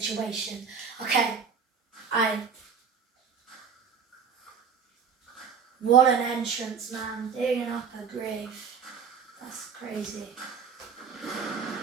Okay. What an entrance, man. Digging up a grave. That's crazy.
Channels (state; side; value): quieter; left; 6.4 dB